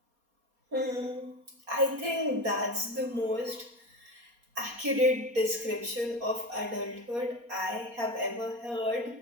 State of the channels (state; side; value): late; left; 4.2 ms